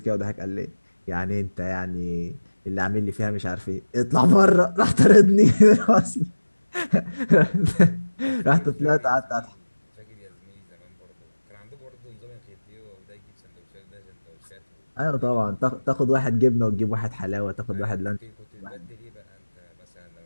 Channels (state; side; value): inverted; both; correlation -1.00